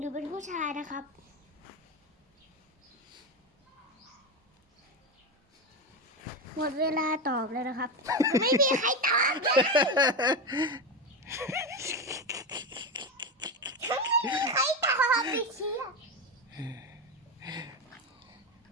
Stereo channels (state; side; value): normal; both; correlation 0.16